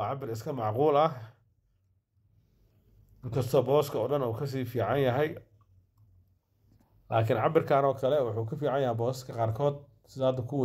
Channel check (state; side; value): identical; both; correlation 1.00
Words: إسكا معقول كسر بوسك أولاً أو كسي في عينها هاي لكن عبر كانوا كلا وحكي في عينها بوسك قاركود زاد